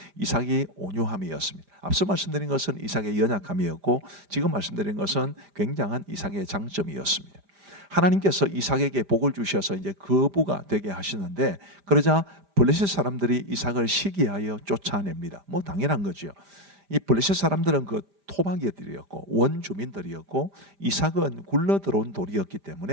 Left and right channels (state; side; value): late; left; 5.0 ms